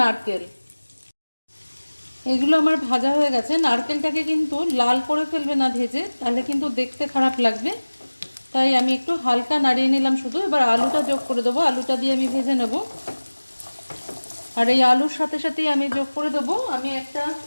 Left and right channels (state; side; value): inverted; both; correlation -1.00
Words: এগুলো আমার ভাজা হয়ে গেছে। নারকেলটাকে কিন্তু লাল করে ফেলবে না ভেজে, তাহলে কিন্তু দেখতে খারাপ লাগবে, তাই আমি একটু হালকা নাড়িয়ে নিলাম শুধু। এবার আলুটা যোগ করে দেবো, আলুটা দিয়ে আমি ভেজে নেব। আর এই আলুর সাথে সাথেই আমি যোগ করে দেবো আমি একটা